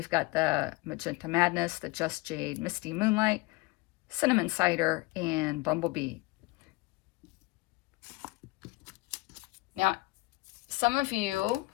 got the Magenta Madness, the Just Jade, Misty Moonlight, Cinnamon Cider, and Bumblebee. Now, some of you,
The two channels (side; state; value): right; quieter; 22.6 dB